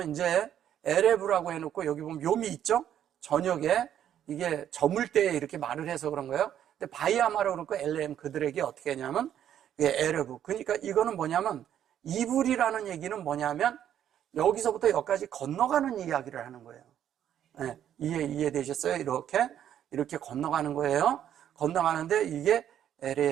이제 에레브라고 해놓고 여기 보면 욤이 있죠? 저녁에 이게 저물 때에 이렇게 말을 해서 그런 거예요. 근데 바이아마로 그렇고 엘레엠 그들에게 어떻게 하냐면 에레브. 그러니까 이거는 뭐냐면 이불이라는 얘기는 뭐냐면 여기서부터 여기까지 건너가는 이야기를 하는 거예요. 네, 이해되셨어요? 이렇게 건너가는 거예요. 건너가는데 이게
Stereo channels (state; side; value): quieter; left; 10.3 dB